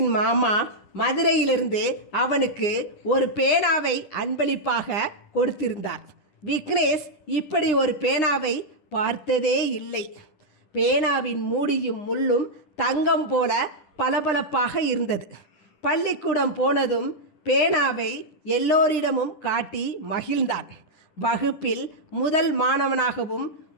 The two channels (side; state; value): right; late; 9.8 ms